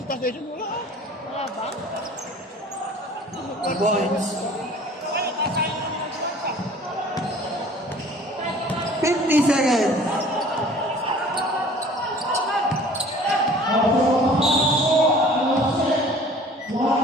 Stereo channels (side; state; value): both; normal; correlation 0.48